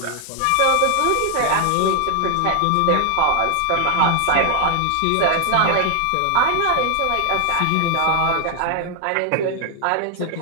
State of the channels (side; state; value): both; different; correlation 0.01